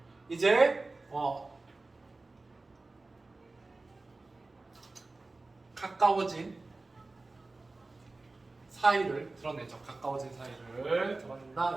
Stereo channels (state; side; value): quieter; left; 3.3 dB